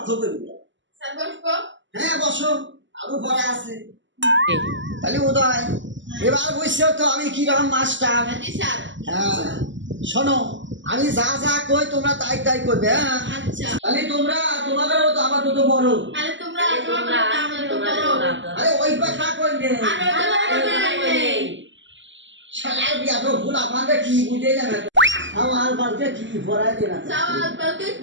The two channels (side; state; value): left; late; 0.54 ms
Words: করবে। হ্যাঁ বসো, আরো পড়া আছে। তাহলে উদয়, এবার বুঝছো তো আমি কিরকম মাস্টার? হ্যাঁ শোনো, আমি যা যা কই তোমরা তাই তাই করবে। হ্যাঁ তাহলে তোমরা তোমাদেরও তো আবার তো বড়। আরে ওই কথা কইলে শালার বিয়া তো ভুল, আমাদের কি বুঝে যাবে? আমার বালকে কি পড়াই দেনা,